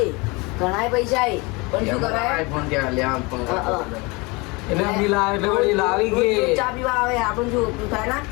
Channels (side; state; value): right; quieter; 26.4 dB